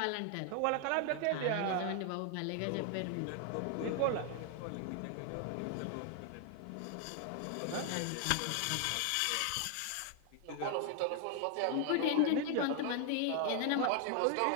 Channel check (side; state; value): both; different; correlation 0.00